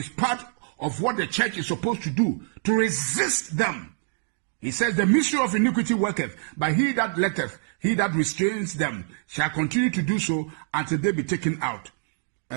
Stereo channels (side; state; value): left; silent; digital silence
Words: part of what the church is supposed to do, to resist them. He says, the mystery of iniquity worketh, but he that letteth, he that restrains them, shall continue to do so until they be taken out.